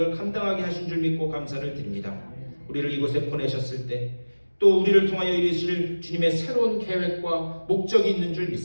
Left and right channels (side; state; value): both; inverted; correlation -1.00